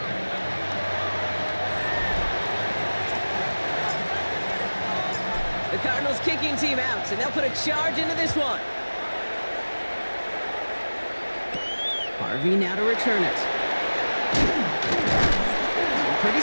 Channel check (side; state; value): both; inverted; correlation -1.00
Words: The Cardinals kicking team out, and they'll put a charge into this one. Harvey now to return it. Pretty